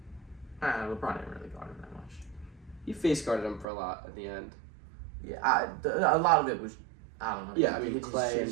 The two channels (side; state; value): left; drops out; at 3.7 s